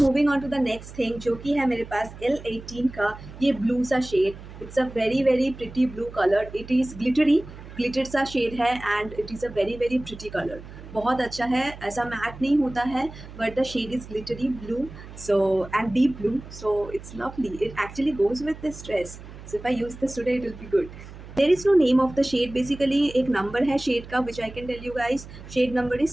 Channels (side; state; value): right; noise; hum, 15 dB below the sound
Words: moving on to the next thing जो कि है मेरे पास L18 का ये ब्लू सा shade. It's a very very pretty blue colour. It is glittered सा shade है and it is a very very pretty colour. बहुत अच्छा है, ऐसा मैट नहीं होता है but the shade is glittery blue so and deep blue. So it's lovely. It actually goes with this dress. So if I use this today it will be good. There is no name of the shade, basically एक number है shade का which I can tell you guys, shade number